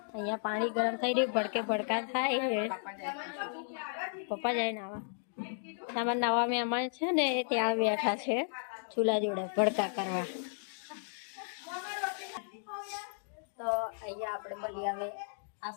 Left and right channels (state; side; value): silent; right; digital silence